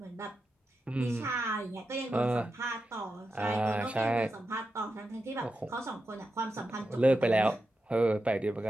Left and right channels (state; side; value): normal; both; correlation 0.89